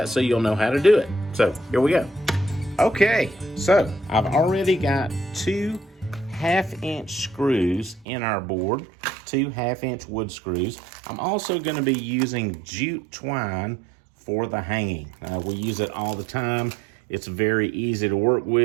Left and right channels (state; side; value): drops out; left; at 8.1 s